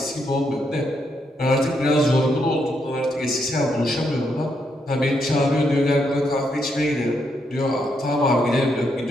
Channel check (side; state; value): both; normal; correlation 0.78